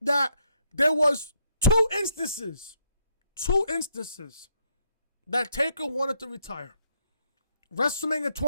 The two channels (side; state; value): both; inverted; correlation -0.74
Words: that there was two instances that Taker wanted to retire. WrestleMania